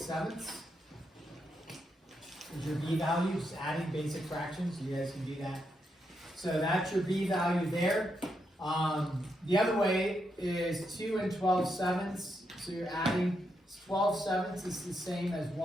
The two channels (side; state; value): both; normal; correlation 0.82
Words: Is your b value, just adding basic fractions. You guys can do that. So that's your b value there. The other way is 2 and 12/7. So you're adding 12/7 is the same as